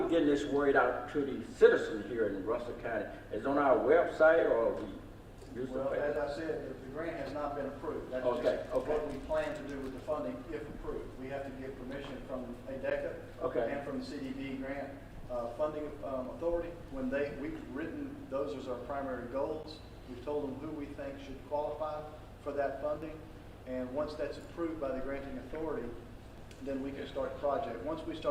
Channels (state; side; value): identical; both; correlation 1.00